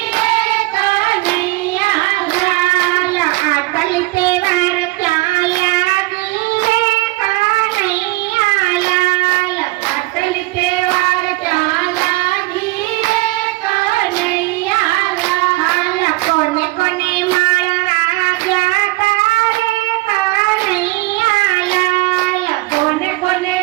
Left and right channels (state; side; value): quieter; left; 20.8 dB